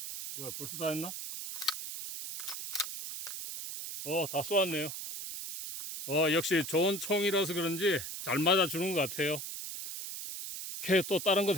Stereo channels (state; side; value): noise; right; hiss, 7 dB below the sound